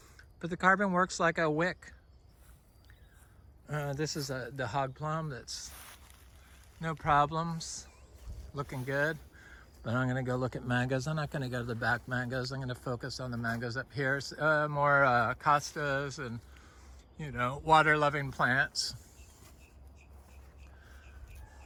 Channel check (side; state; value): both; identical; correlation 1.00